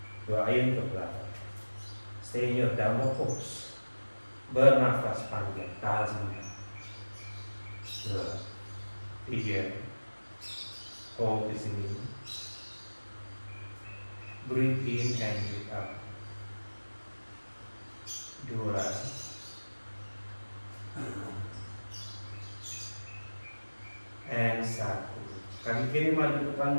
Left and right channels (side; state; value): both; inverted; correlation -1.00